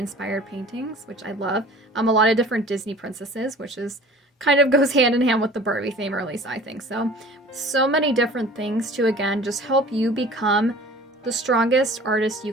paintings, which I love. A lot of different Disney princesses, which is kind of goes hand in hand with the Barbie theme, or at least I think so. So many different things to, again, just help you become the strongest artist you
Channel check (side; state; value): both; normal; correlation 0.45